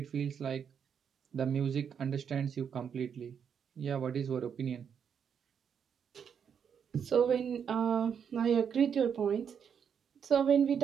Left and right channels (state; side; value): quieter; left; 7.5 dB